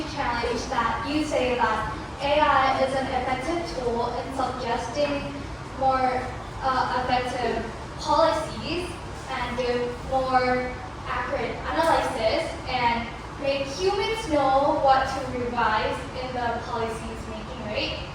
challenge that you say that AI is an effective tool in suggesting more effective policies and do more accurate analysis and make humans know what to revise in the policies making, right?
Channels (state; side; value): identical; both; correlation 1.00